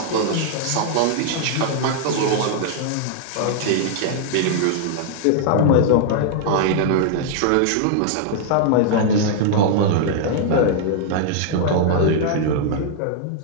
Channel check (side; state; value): both; different; correlation -0.01